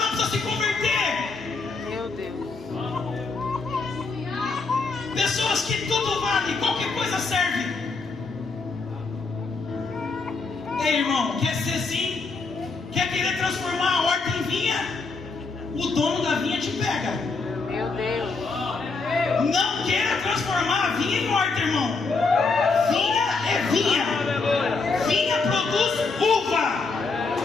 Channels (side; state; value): right; quieter; 4.2 dB